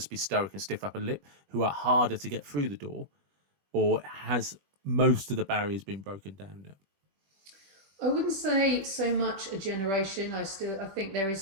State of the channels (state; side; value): late; left; 21 ms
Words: be stoic and stiff upper lip, who are harder to get through the door, or has most of the barriers been broken down now? I wouldn't say so much a generation. I think there is